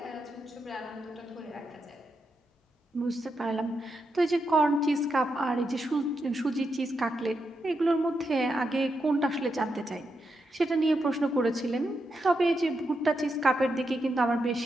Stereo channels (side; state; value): both; normal; correlation 0.85